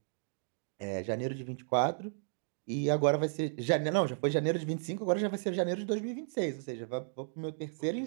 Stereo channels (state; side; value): silent; left; digital silence